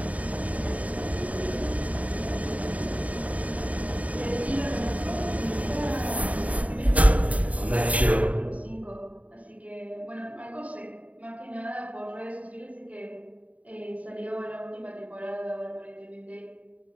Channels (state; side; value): late; left; 0.069 ms